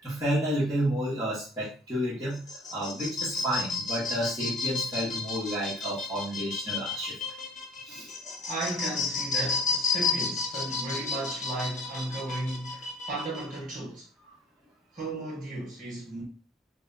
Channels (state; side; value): normal; both; correlation 0.50